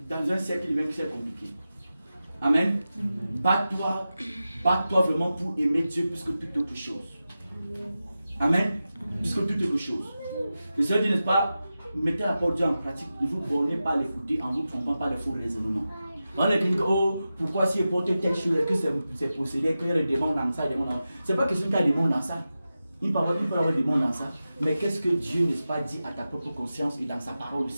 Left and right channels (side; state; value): both; inverted; correlation -0.93